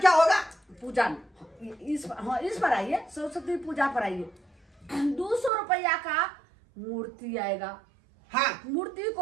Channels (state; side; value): drops out; left; at 5.5 s